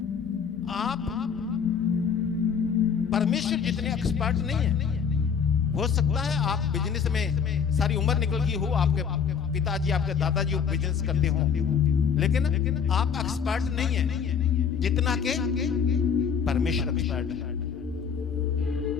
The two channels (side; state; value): right; quieter; 6.8 dB